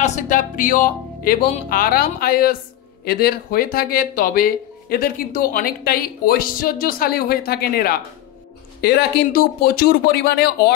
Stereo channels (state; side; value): quieter; right; 13.3 dB